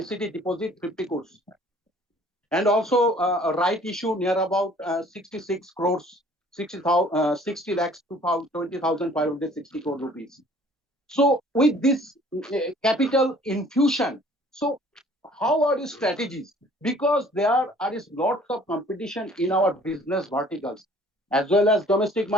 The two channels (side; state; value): both; normal; correlation 0.54